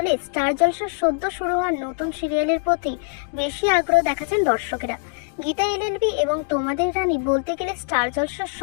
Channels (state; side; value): silent; right; 56 dB below the other